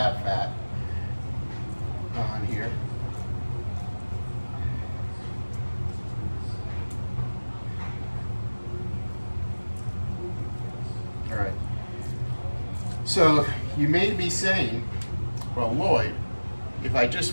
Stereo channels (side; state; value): both; inverted; correlation -1.00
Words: fat on here. All right. So you may be saying, well, Lloyd, if I just